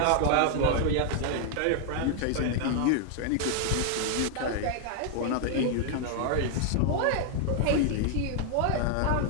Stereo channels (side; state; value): both; different; correlation 0.00